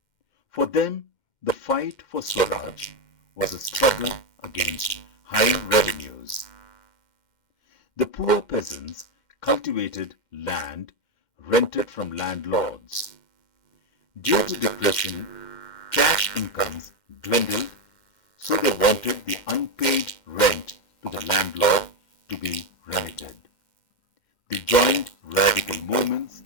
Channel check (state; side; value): late; right; 2.1 ms